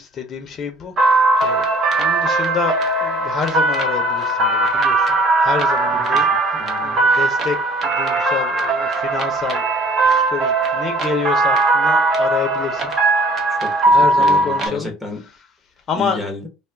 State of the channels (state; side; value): normal; both; correlation 0.54